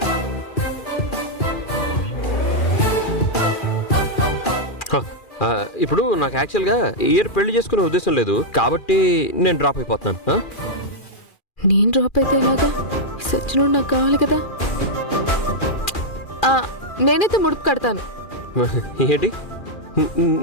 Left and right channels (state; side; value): late; right; 2.4 ms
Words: ఇప్పుడు నాకు యాక్చువల్గా ఇయర్ పెళ్లి చేసుకునే ఉద్దేశం లేదు కాబట్టి నేను డ్రాప్ అయిపోతున్నాను. నేను డ్రాప్ అయితే ఎలాగా? సచ్చినోడు నాకు కావాలి కదా. నేనైతే ముడుపు కడతాను. ఏంటి